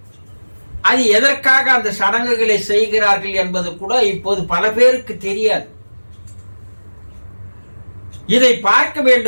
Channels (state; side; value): inverted; both; correlation -1.00